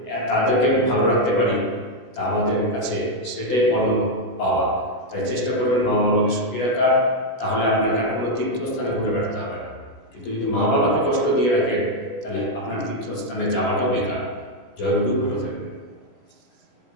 তাদেরকে ভালো রাখতে পারি, তা আমাদের কাছে সেটাই পরম পাওয়া। তাই চেষ্টা করবেন মা বাবাকে সুখী রাখার, তাহলে আপনাকে আর কোনো তীর্থস্থানে ঘুরে বেড়াতে হবে না। কিন্তু যদি মা বাবাকে কষ্ট দিয়ে রাখেন, তাহলে আপনার তীর্থস্থানে যাওয়াটাও বেকার। জয় গুরু, ভালো থাকবেন।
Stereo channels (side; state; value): right; late; 16 ms